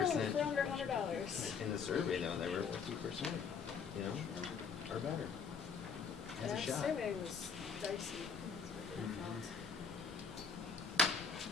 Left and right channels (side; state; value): right; quieter; 5.8 dB